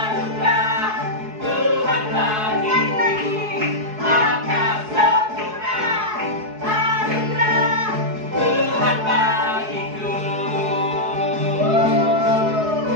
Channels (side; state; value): left; late; 4.7 ms